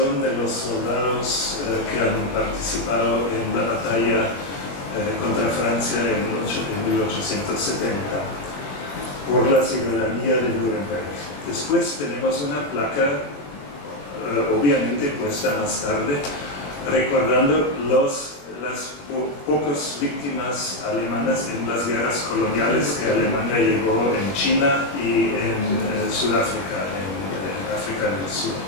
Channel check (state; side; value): late; right; 21 ms